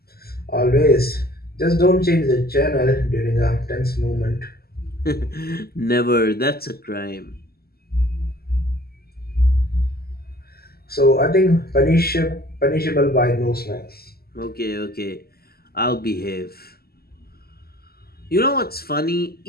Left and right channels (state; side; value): late; right; 0.45 ms